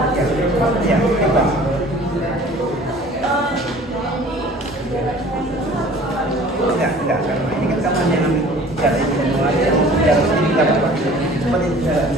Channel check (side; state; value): right; noise; hum, 26 dB below the sound